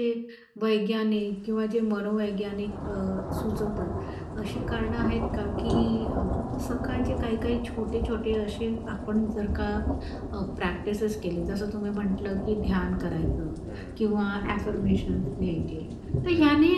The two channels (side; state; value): both; identical; correlation 1.00